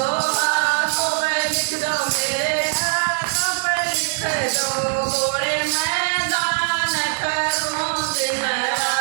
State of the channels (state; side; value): silent; left; digital silence